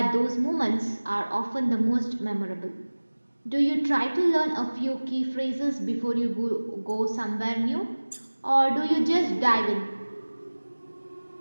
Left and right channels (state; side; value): inverted; both; correlation -1.00